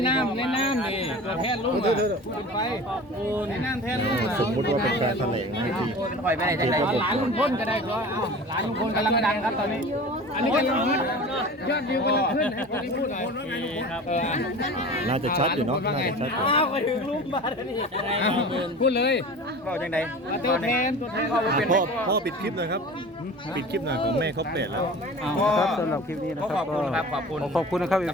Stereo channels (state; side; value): normal; both; correlation 0.38